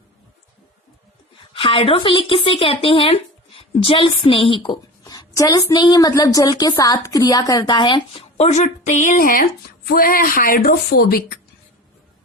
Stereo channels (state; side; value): normal; both; correlation 0.34